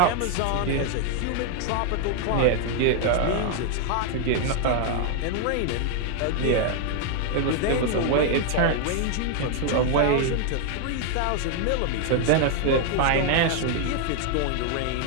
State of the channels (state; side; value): different; both; correlation 0.00